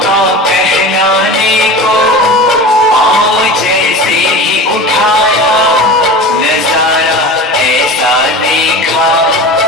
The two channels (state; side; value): normal; both; correlation 0.33